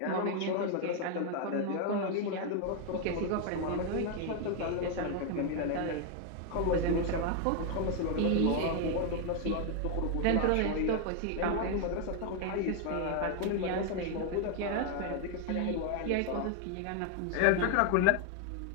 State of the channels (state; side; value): different; both; correlation 0.01